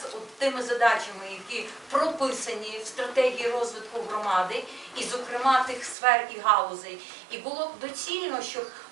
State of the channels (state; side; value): drops out; left; at 6.0 s